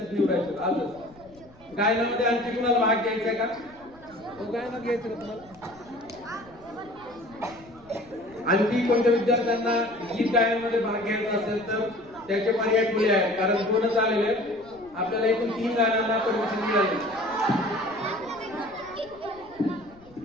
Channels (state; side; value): noise; left; rumble, 26 dB below the sound